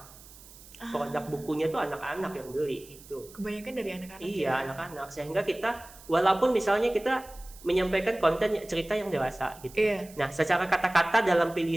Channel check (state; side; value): noise; right; hiss, 21 dB below the sound